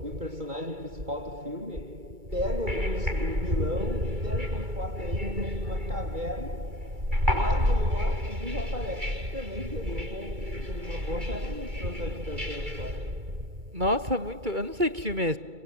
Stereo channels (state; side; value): late; left; 2.3 ms